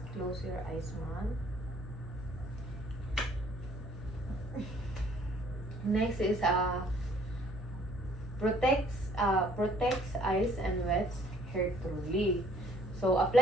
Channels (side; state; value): both; normal; correlation 0.59